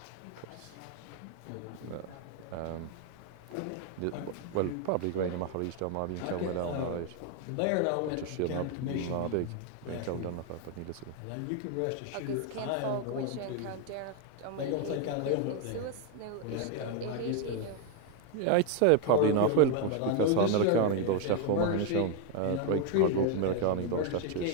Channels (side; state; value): both; different; correlation 0.01